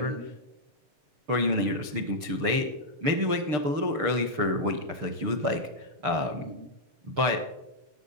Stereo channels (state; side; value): late; left; 6.8 ms